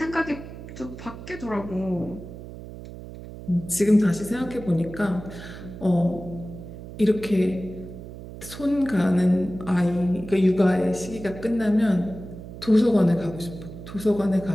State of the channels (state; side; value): noise; right; hum, 13 dB below the sound